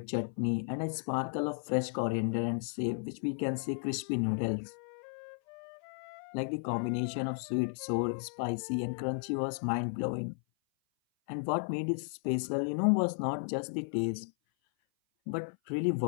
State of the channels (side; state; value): right; silent; 55 dB below the other